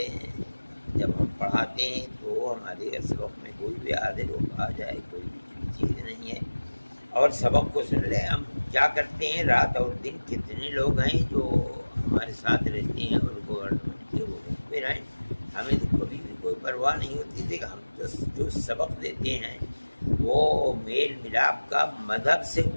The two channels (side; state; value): both; inverted; correlation -1.00